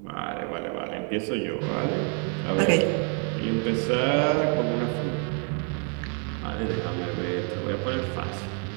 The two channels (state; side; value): quieter; left; 39.9 dB